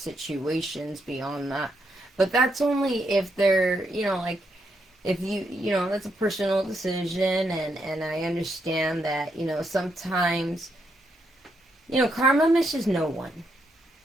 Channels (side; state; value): both; normal; correlation 0.79